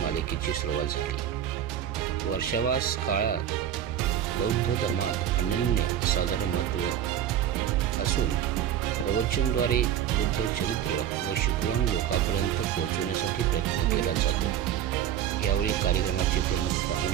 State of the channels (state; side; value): quieter; left; 10.4 dB